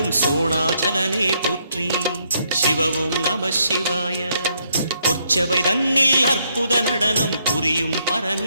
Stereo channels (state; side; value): inverted; both; correlation -0.74